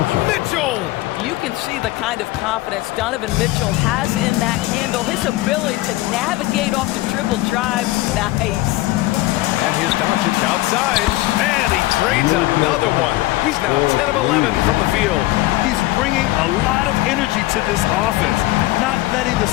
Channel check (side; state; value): right; quieter; 18.4 dB